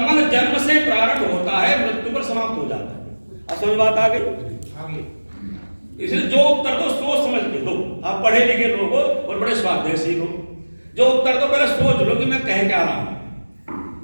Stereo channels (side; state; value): both; inverted; correlation -1.00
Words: जन्म से प्रारंभ होता है, मृत्यु पर समाप्त हो जाता है। अब समझ बात आ गई? इसलिए जो उत्तर दो सोच समझ के दो। आप पढ़े लिखे लोग हो और बड़े स्वाध्यायी हो, जो उत्तर दो पहले सोच लो कि मैं कह क्या रहा हूं,